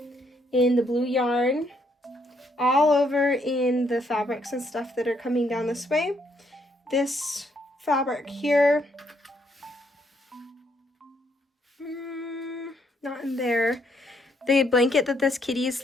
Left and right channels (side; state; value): both; normal; correlation 0.72